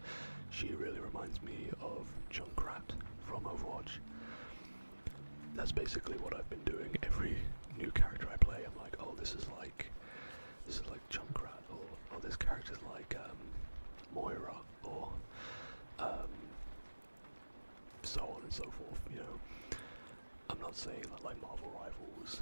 She really reminds me of Junkrat from Overwatch. That's basically what I've been doing. Every new character I play, I'm like, oh, this is like Junkrat, or oh, this character's like Moira, or so on and so forth. You know, I'm not saying that like Marvel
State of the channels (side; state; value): both; inverted; correlation -1.00